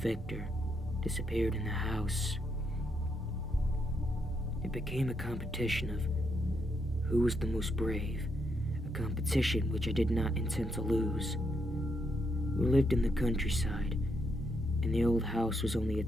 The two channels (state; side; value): normal; both; correlation 0.78